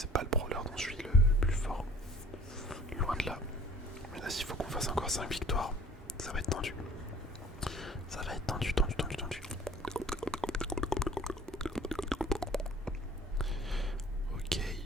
pas le brawler dont je suis le plus fort. Loin de là. Mais là s'il faut qu'on fasse encore 5 victoires, ça va être tendu. Ça va être tendu. Ok.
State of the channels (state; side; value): normal; both; correlation 0.52